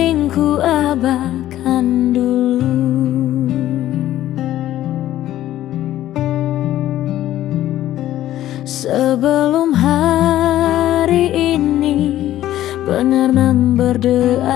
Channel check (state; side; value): quieter; right; 13.4 dB